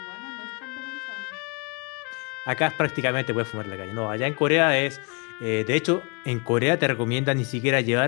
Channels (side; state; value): right; quieter; 33.2 dB